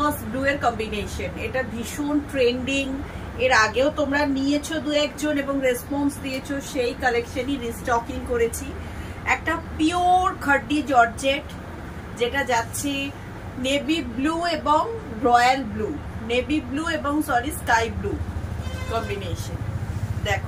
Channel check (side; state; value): both; identical; correlation 1.00